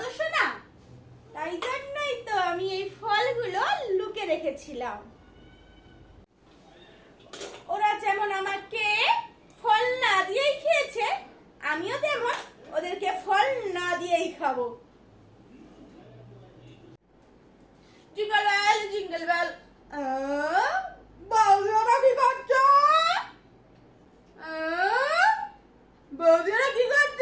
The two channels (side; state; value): both; identical; correlation 1.00